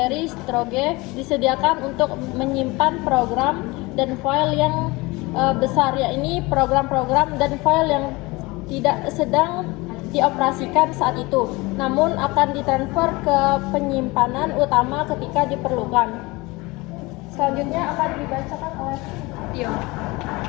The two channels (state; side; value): quieter; right; 23.3 dB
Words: storage disediakan untuk menyimpan program dan file yang besar, yakni program-program dan file yang tidak sedang dioperasikan saat itu, namun akan ditransfer ke penyimpanan utama ketika diperlukan. Selanjutnya akan dibacakan oleh Tio.